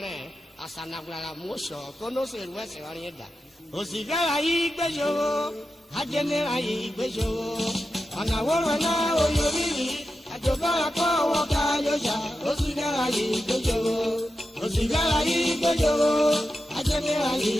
rẹ̀ àsànàgbàrà mọ́ṣọ̀ kónóṣè wẹ́sẹ̀ wọ́n yẹn dà. Ozighe yìí gbẹ́jọ́ ajẹ́nira yìí gbẹ́jọ́ ọ̀nà wọ́rọ̀ náà oyori yìí àjọba àpọ̀ ọwọ́ ká yọjà. Ozighe yìí gbẹ́jọ́ Ozighe yìí gbẹ́jọ́ ajẹ́nira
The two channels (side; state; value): both; normal; correlation 0.90